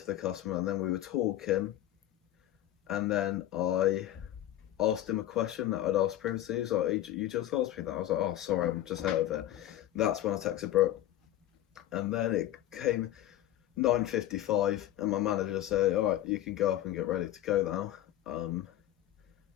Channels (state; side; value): quieter; right; 13.3 dB